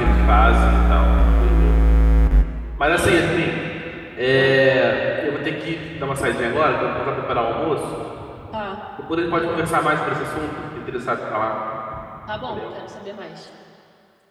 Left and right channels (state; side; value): identical; both; correlation 1.00